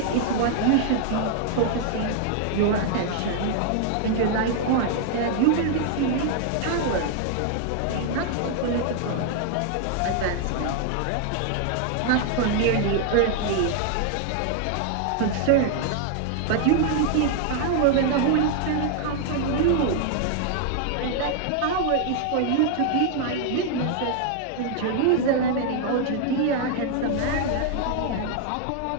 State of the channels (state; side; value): different; both; correlation 0.00